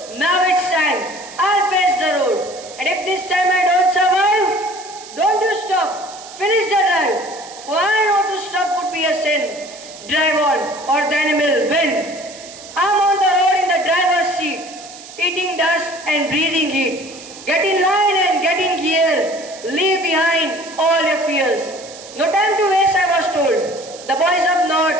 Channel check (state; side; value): noise; right; hiss, 16 dB below the sound